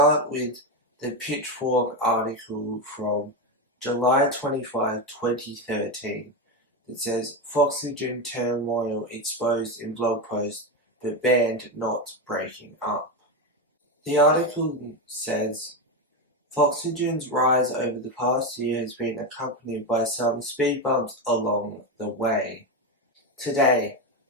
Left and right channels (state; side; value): normal; both; correlation 0.12